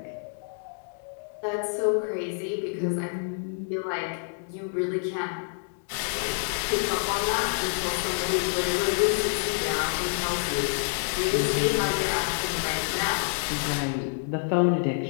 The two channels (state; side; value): silent; right; digital silence